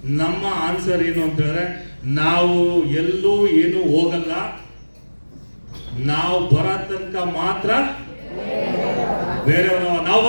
ನಮ್ಮ ಆನ್ಸರ್ ಏನು ಅಂತ ಹೇಳಿದ್ರೆ, ನಾವು ಎಲ್ಲೂ ಏನು ಹೋಗಲ್ಲ, ನಾವು ಬರೋ ತನಕ ಮಾತ್ರ ಬೇರೆಯವರು. ನಾವು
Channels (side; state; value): both; inverted; correlation -1.00